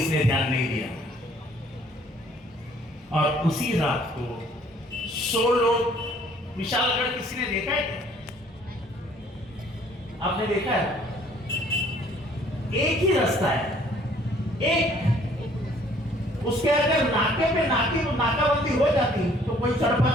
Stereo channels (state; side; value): normal; both; correlation 0.59